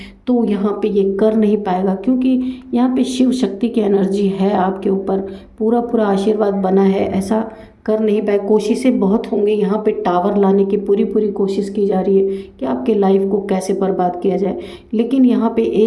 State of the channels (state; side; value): identical; both; correlation 1.00